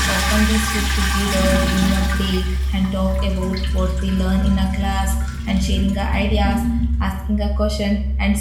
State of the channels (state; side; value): identical; both; correlation 1.00